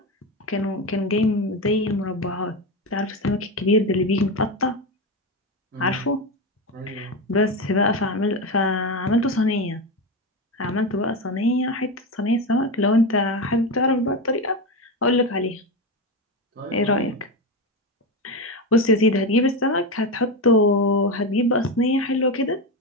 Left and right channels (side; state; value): both; normal; correlation 0.16